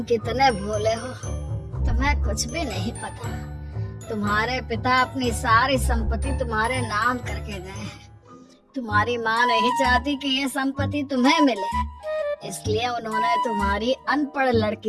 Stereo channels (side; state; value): both; identical; correlation 1.00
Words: कितने भोले हो, तुम्हें कुछ भी नहीं पता। तुम्हारे पिता अपनी सारी संपत्ति तुम्हारे नाम करके गए हैं। तुम्हारी माँ नहीं चाहती कि ये संपत्ति तुम्हें मिले, इसलिए उन्होंने तुम्हारी अनपढ़